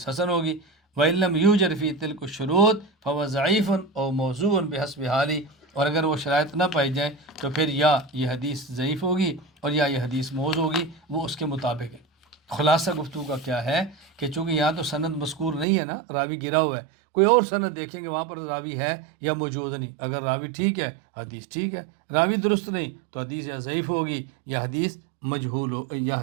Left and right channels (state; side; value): drops out; left; at 15.7 s